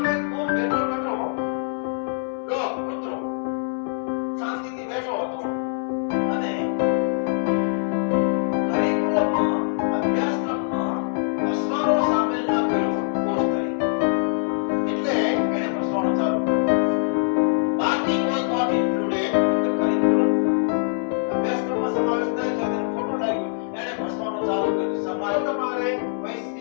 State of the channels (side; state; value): right; silent; 63 dB below the other